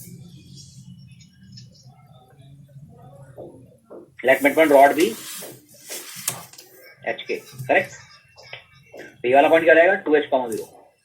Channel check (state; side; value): identical; both; correlation 1.00